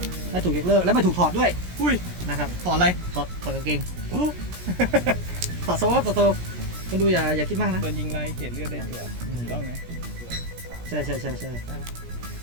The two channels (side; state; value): left; late; 17 ms